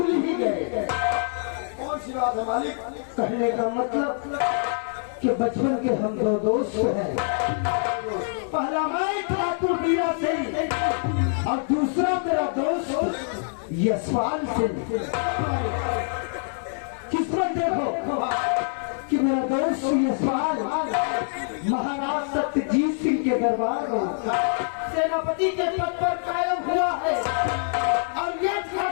ही गए। कौन सी बात है मालिक? कहने का मतलब कि बचपन के हम दो दोस्त हैं। पहला मैं ठाकुर वीरा सिंह और दूसरा मेरा दोस्त यशपाल सिंह। किस्मत देखो कि मेरा दोस्त यशपाल महाराज सत्यजीत सिंह के दरबार में सेनापति के पद पर कायम हुआ है और ये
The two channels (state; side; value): silent; right; digital silence